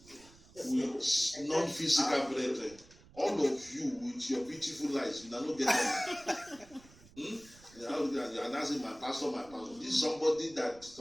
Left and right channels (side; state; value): right; noise; rumble, 24 dB below the sound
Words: non-physical brethren. All of you with your beautiful lives, you are not getting it. You are asking my pastor, This is somebody that